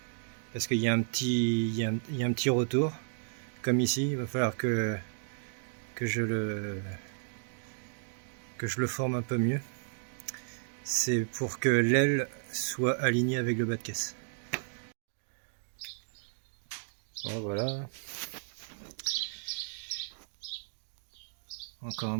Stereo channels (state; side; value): silent; left; digital silence